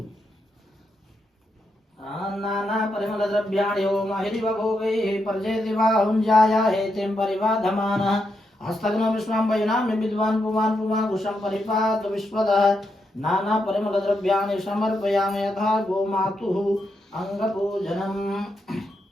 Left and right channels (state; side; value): normal; both; correlation 0.82